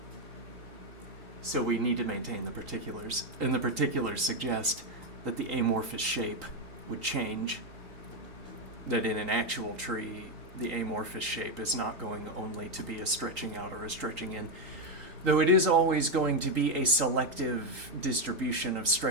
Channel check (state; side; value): late; left; 3.9 ms